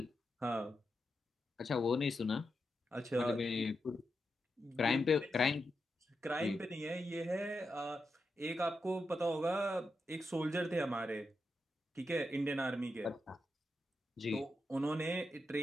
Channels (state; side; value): normal; both; correlation 0.87